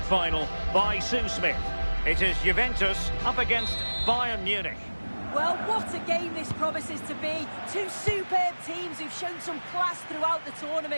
final by Sue Smith. It is Juventus up against Bayern Munich. Well, what a game this promises to be. Two superb teams who've shown some class throughout the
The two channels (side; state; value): both; inverted; correlation -1.00